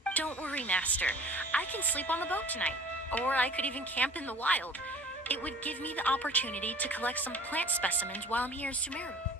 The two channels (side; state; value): both; normal; correlation 0.47